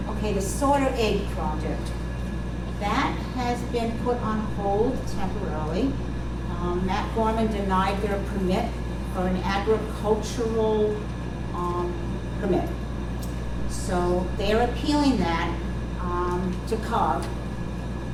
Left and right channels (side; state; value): both; identical; correlation 1.00